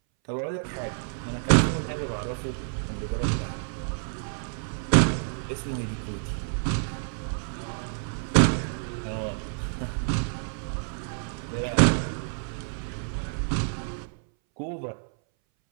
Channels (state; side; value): silent; left; 59 dB below the other